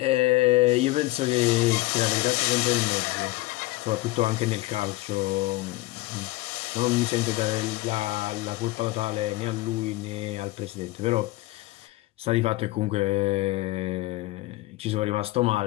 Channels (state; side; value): quieter; right; 19.5 dB